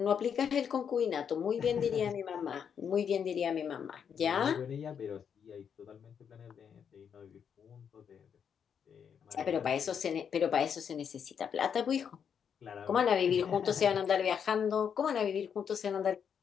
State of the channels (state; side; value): quieter; right; 7.5 dB